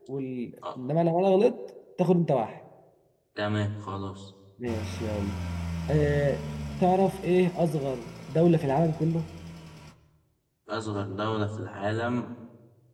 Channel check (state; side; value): identical; both; correlation 1.00